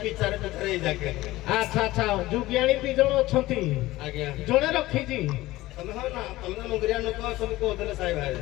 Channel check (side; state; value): right; quieter; 17.8 dB